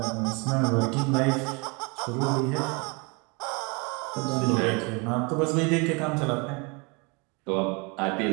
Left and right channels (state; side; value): quieter; left; 29.7 dB